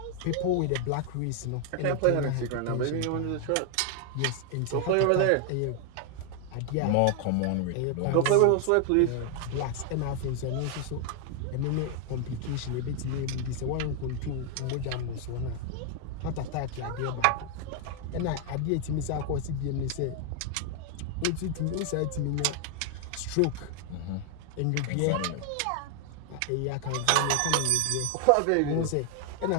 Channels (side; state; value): both; different; correlation 0.00